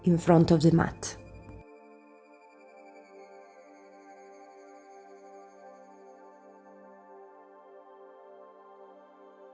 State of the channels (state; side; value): identical; both; correlation 1.00